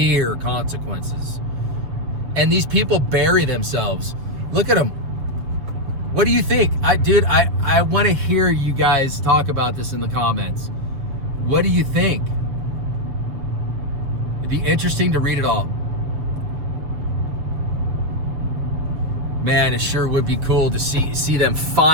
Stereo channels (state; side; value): late; left; 7.5 ms